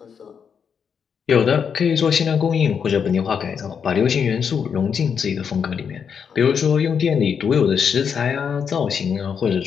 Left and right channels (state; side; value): quieter; right; 6.9 dB